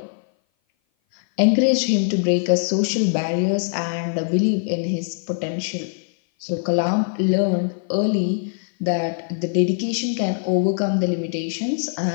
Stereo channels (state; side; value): silent; right; 57 dB below the other